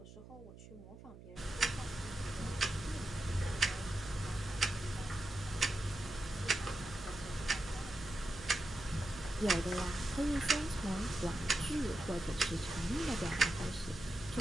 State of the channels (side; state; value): right; noise; hum, 16 dB below the sound